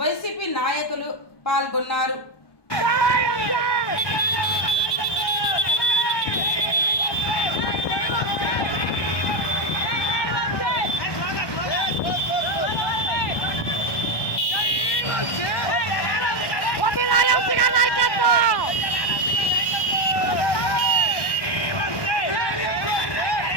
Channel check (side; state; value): right; late; 1.2 ms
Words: వైసీపీ నాయకులు పాల్గొన్నారు.